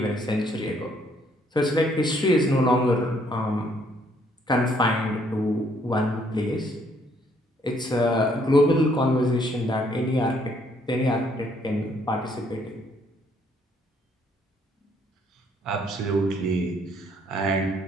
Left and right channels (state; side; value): normal; both; correlation 0.67